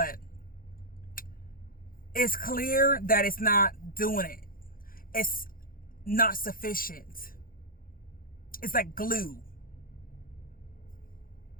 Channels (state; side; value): late; right; 0.41 ms